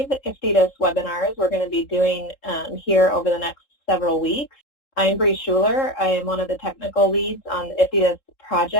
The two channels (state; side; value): late; right; 3.7 ms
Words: IFTDSS webinars we're going to be doing here over the next several weeks. I'm Bree Schuler. I am one of the technical leads on the IFTDSS